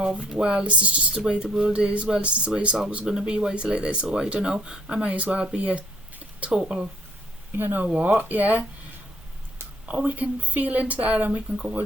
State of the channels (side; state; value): both; normal; correlation 0.62